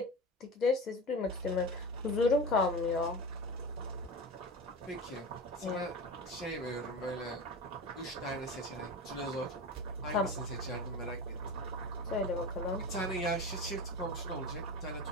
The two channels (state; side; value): normal; both; correlation 0.28